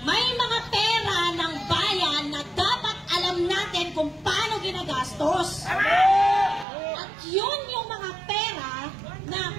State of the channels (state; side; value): drops out; left; at 6.7 s